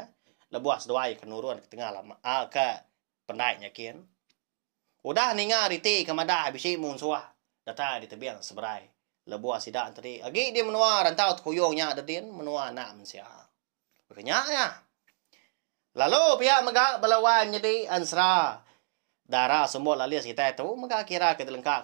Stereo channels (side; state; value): left; silent; 58 dB below the other